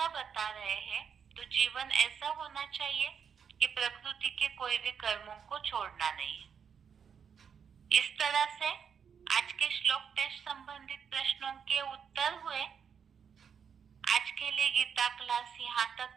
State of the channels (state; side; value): quieter; left; 7.1 dB